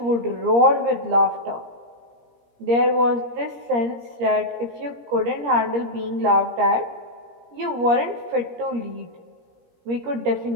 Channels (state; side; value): late; left; 17 ms